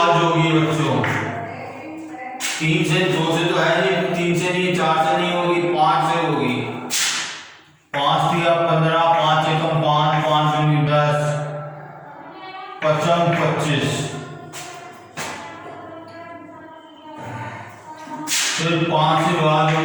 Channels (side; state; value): both; identical; correlation 1.00